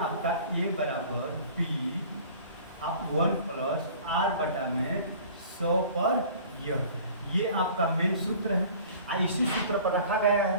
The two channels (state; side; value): inverted; both; correlation -0.47